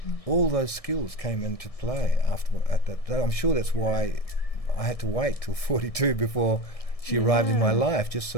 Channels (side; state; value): right; late; 1.6 ms